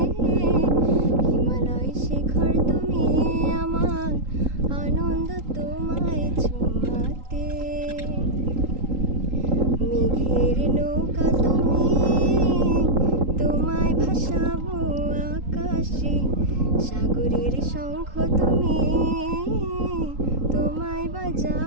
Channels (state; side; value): late; left; 3.8 ms